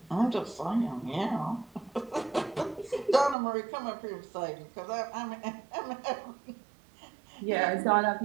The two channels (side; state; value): left; drops out; at 3.4 s